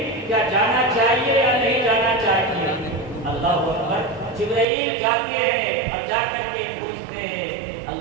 کیا جانا چاہیے یا نہیں جانا چاہیے؟ اللہ اکبر۔ جبرائیل جاتے ہیں اور جا کر کے پوچھتے ہیں،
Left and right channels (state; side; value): drops out; left; at 4.7 s